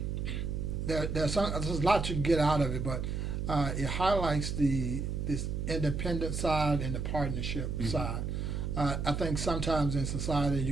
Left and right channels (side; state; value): right; noise; hum, 2 dB below the sound